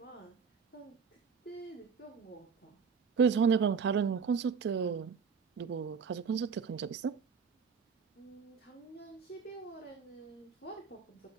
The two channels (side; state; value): left; quieter; 6.1 dB